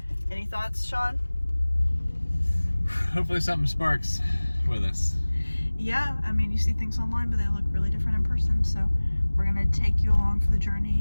Any thoughts, Sean? Hopefully something sparks with us. Yeah, I mean, you see things online, but they look really different in person. So we're gonna take you along for the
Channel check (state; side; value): inverted; both; correlation -1.00